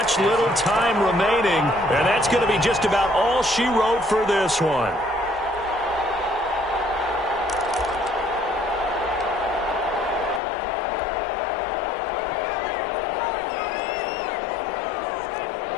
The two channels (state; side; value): drops out; right; at 10.4 s